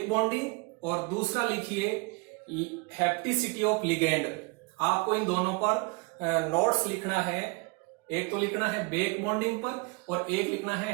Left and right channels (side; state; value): left; quieter; 29.6 dB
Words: बॉन्डिंग और दूसरा लिखिए हैप्टिसिटी ऑफ लिगेंड। आपको इन दोनों पर नोट्स लिखना है। एक तो लिखना है बेक बॉन्डिंग पर और एक लिखना है